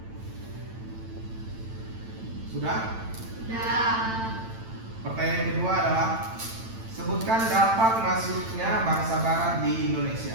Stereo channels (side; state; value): left; late; 9.0 ms